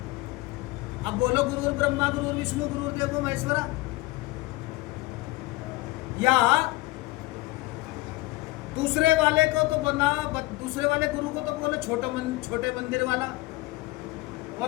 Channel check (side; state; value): right; quieter; 20.4 dB